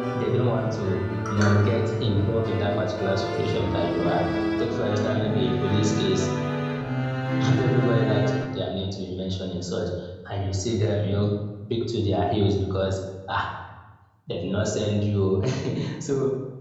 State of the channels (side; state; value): both; identical; correlation 1.00